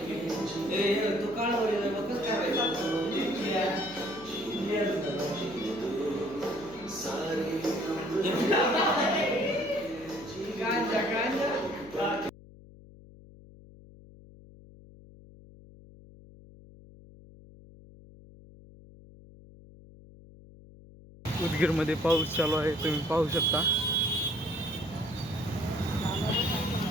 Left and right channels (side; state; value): left; noise; hum, 20 dB below the sound